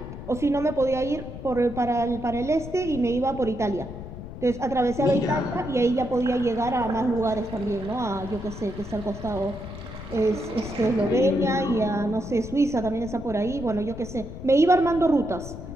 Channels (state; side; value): noise; left; rumble, 11 dB below the sound